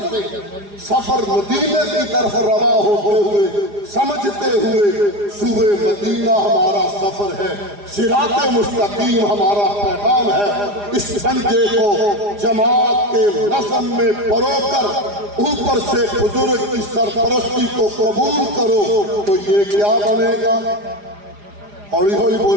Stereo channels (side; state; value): left; late; 4.9 ms